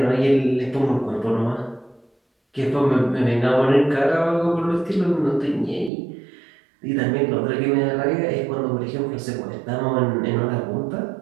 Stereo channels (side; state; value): left; drops out; at 5.9 s